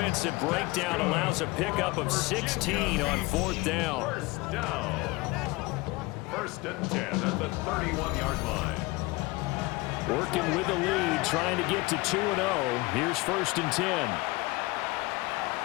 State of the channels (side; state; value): right; quieter; 22.6 dB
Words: breakdown allows a pickup of 16 on 4th down. 1st down. 1st and 10 at the 31-yard line. Working with the lead, trying to get to 2-0. Here's 1st and 10.